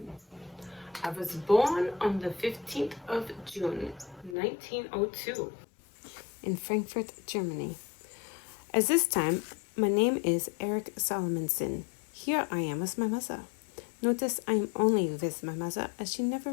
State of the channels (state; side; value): drops out; right; at 4.4 s